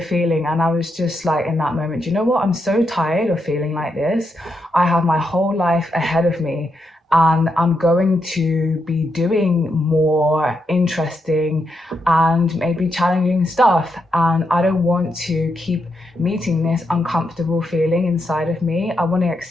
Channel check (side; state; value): both; normal; correlation 0.82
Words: And I was just like, in that moment, you know what? I'm so tired of feeling like this. I have my whole life ahead of me. And I'm going to be doing more interesting and maybe challenging stuff. And I don't want to keep meeting this uncomfortable feeling inside of me. I want to